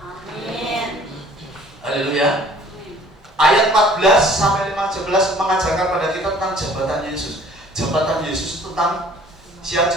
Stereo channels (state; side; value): normal; both; correlation 0.53